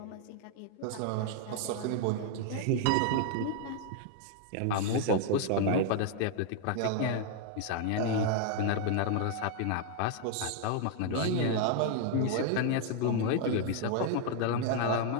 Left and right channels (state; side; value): different; both; correlation 0.00